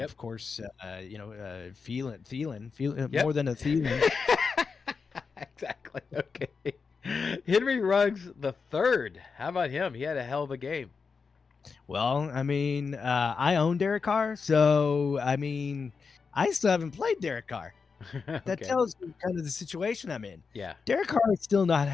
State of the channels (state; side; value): quieter; right; 5.2 dB